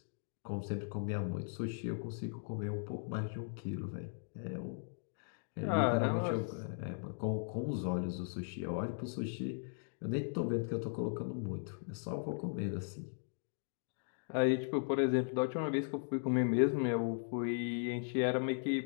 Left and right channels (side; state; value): right; silent; digital silence